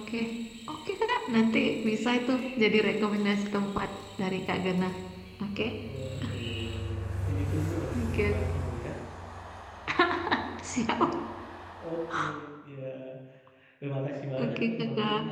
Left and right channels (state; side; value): identical; both; correlation 1.00